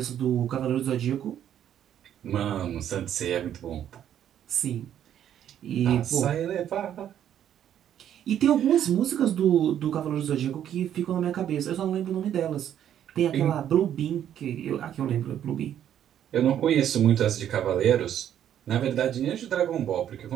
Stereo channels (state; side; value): quieter; left; 10.3 dB